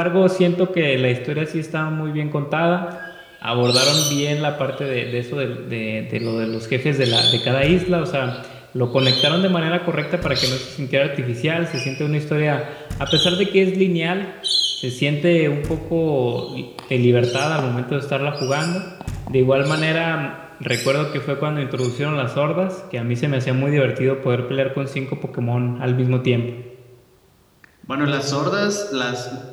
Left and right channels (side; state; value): both; identical; correlation 1.00